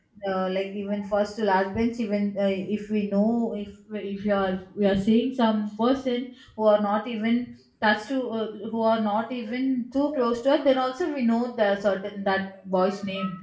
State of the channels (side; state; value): both; identical; correlation 1.00